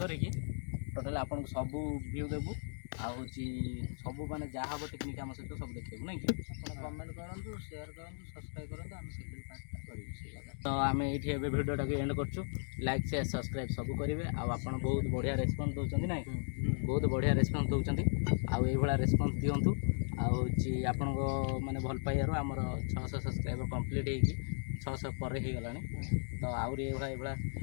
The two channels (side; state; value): right; silent; digital silence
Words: टोटाल आपन को सब व्यू देबू आहूँ सब माने जहाँ हम टेक्निक आम सहित सब देखू ना कि कमेंट करूँ शेयर करूँ सब्सक्राइब करूँ आम सेकेंड पार्टा करूँ तो आम ये भिडियोटा एंड करूँ लाइक शेयर सब्सक्राइब सब करेंगे आपड़ बहुत बढ़िया रेस्पन्स दौरान ना बहुत बढ़िया रेस्पन्स दौरान आउ रेस्पन्स दिंतु आपण माने भल पाइबार आमर 600 सब्सक्राइबर कंप्लीट होगी 600 पर हो गला तो आउरी ये